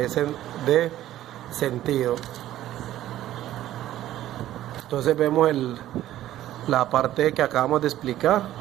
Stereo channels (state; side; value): quieter; left; 13.4 dB